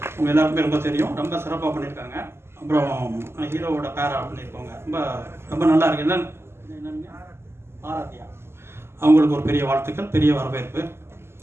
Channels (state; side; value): late; left; 0.12 ms